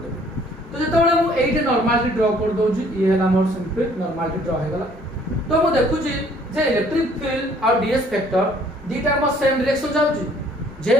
देबो तो जेतबेले मु एइटे नॉर्मली ड्रा कर दोजी ई हैला मोर सिंपल नॉर्मली ड्रा हे गला तो मु देखुची जे इलेक्ट्रिक फील्ड और डीएस वेक्टर दीटा म सेम डायरेक्शन जाउची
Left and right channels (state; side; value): normal; both; correlation 0.59